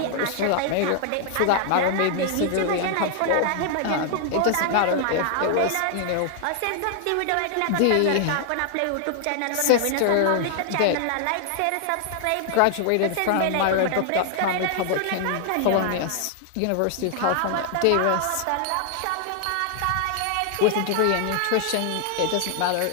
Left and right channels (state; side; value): different; both; correlation 0.00